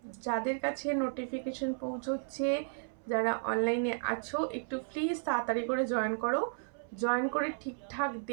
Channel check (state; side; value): silent; left; 55 dB below the other